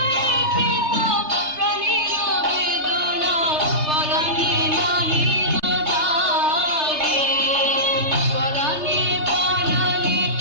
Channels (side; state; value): left; late; 3.3 ms